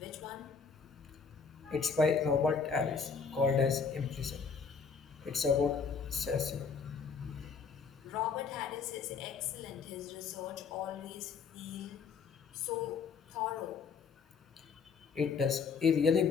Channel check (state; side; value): quieter; right; 5.6 dB